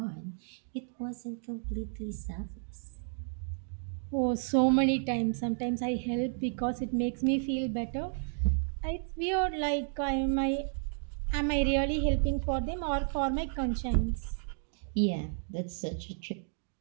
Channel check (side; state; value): left; silent; digital silence